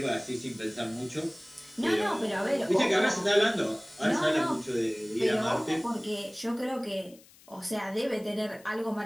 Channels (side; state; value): left; noise; hiss, 25 dB below the sound